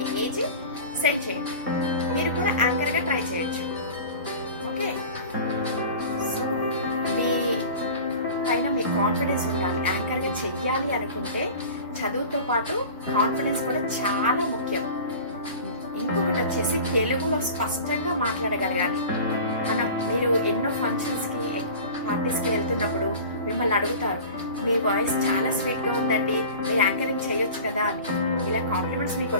ఏజ్ సెండ్ చేయండి. మీరు కూడా యాంకర్గా ట్రై చేయొచ్చు. ఓకే, సో మీ పైన మీ కాన్ఫిడెన్స్ ఉండాలి. యాంకర్గా చెయ్యాలి అనుకుంటే చదువుతో పాటు కాన్ఫిడెన్స్ కూడా చాలా ముఖ్యం. ఇంకొకటి వచ్చేసి తెలుగులో స్పష్టంగా మాట్లాడగలగాలి. మీరు ఎన్నో ఫంక్షన్స్కి, పార్టీస్కి వెళ్తున్నప్పుడు మిమ్మల్ని అడుగుతారు, మీ వాయిస్ చాలా స్వీట్గా ఉందండి, మీరు యాంకరింగ్ చేయొచ్చు కదా అని. ఇలా కాంప్లిమెంట్స్ మీకు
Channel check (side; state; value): both; inverted; correlation -0.37